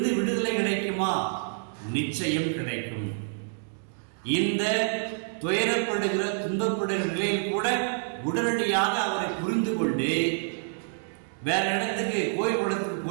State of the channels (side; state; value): left; silent; digital silence